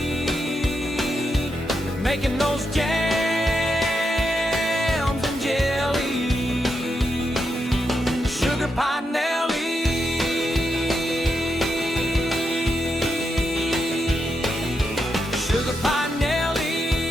making those jams and jelly. Sugar Pie Nellie.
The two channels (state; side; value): normal; both; correlation 0.84